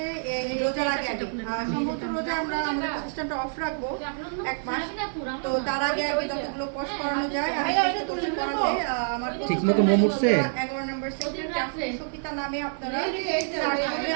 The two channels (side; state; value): left; silent; digital silence